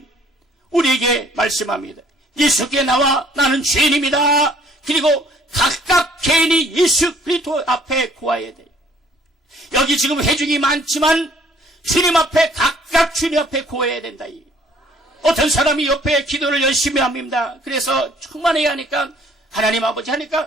우리에게 말씀합니다. 예수께 나와 나는 죄인입니다. 그리고 각각 개인이 예수 그리스도 앞에 구해야 돼. 여기 지금 회중이 많지만 주님 앞에 각각 주님 앞에 구해야 된다. 어떤 사람이 옆에 기도를 열심히 합니다. 그래서 충만해야 하니까 하나님 아버지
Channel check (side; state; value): both; normal; correlation 0.60